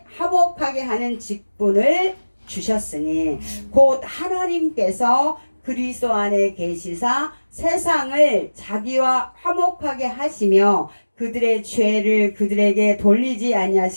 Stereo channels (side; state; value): both; inverted; correlation -1.00